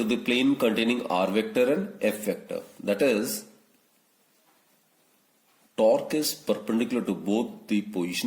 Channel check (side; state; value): both; identical; correlation 1.00